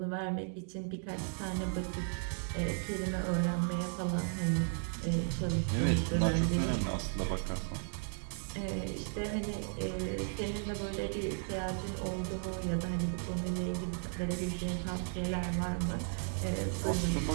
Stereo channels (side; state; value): left; silent; 54 dB below the other